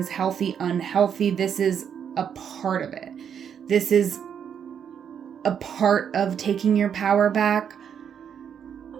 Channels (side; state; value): left; quieter; 8.0 dB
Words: healthy, unhealthy. This is a part of it. This is a part of taking your power back.